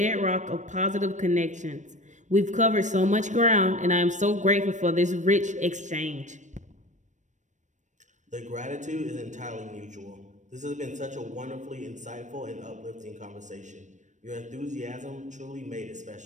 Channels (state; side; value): late; left; 0.35 ms